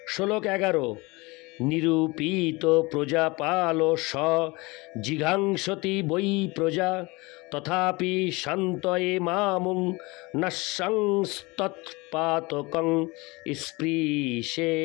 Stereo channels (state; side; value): quieter; right; 24.6 dB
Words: শ্লোক ১১। নিরূপিত প্রজাপাল স জিঘাংসতি বৈ প্রজা তথাপি শান্তয়ে মামুং নঃসংস্তৎপাতকং